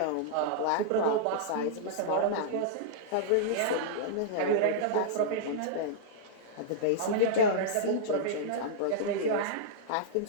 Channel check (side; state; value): both; different; correlation -0.02